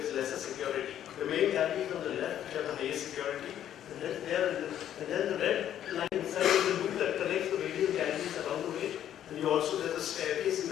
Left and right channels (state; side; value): quieter; right; 10.7 dB